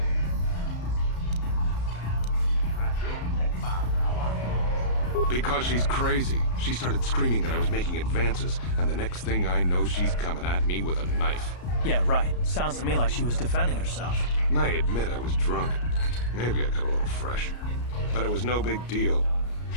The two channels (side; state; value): right; late; 34 ms